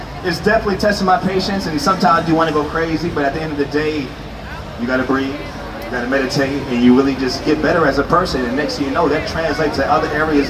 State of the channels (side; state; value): both; identical; correlation 1.00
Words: definitely testing my patience, and sometimes you want to go crazy, but at the end of the day, you gotta breathe, you gotta meditate, and you really just get better as a person, and next thing you know, that translates to other areas